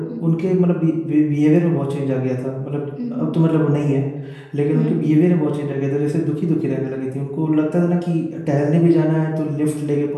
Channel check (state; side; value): identical; both; correlation 1.00